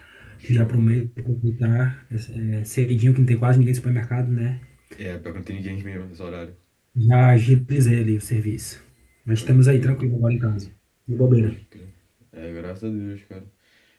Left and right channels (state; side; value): identical; both; correlation 1.00